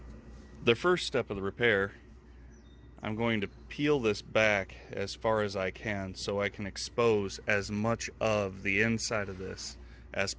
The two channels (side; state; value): both; identical; correlation 1.00